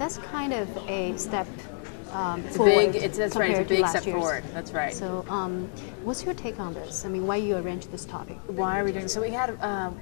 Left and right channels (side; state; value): right; silent; 58 dB below the other